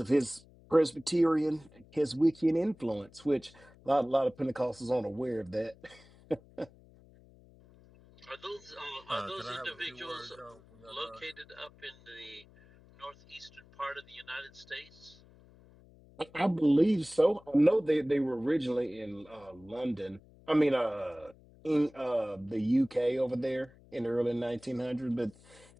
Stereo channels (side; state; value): left; noise; hum, 25 dB below the sound